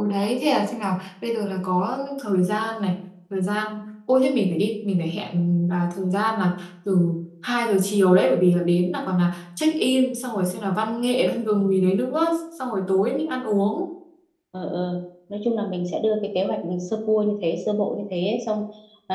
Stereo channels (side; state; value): both; identical; correlation 1.00